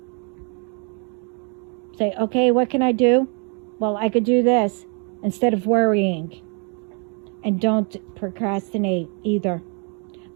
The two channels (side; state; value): left; quieter; 36.9 dB